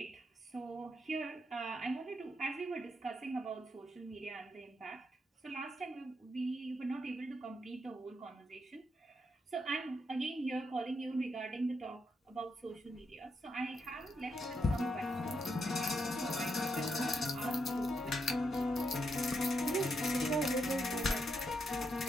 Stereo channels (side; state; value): both; normal; correlation 0.80